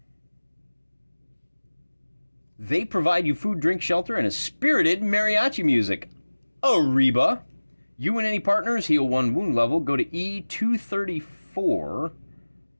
They provide you food, drink, shelter, and a spirited mariachi music. Arriba. You and any partners heal 1 wound level. Go to E234.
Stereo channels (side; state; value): both; inverted; correlation -1.00